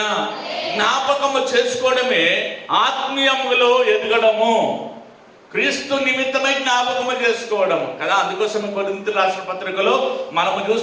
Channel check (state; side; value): identical; both; correlation 1.00